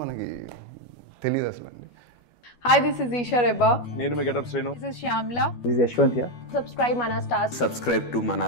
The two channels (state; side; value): late; right; 12 ms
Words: మనకి తెలియదు అసలు అండి. Hi, this is Isha Reba. నేను మీ Getup Srinu. This is Shyamla. This is Yashwant here. Subscribe Mana Stars. Subscribe to